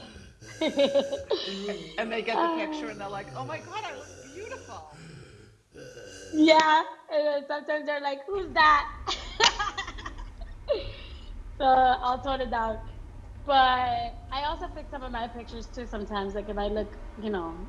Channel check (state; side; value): identical; both; correlation 1.00